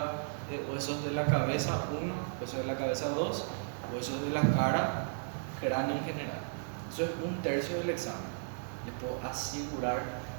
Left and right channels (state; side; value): silent; left; digital silence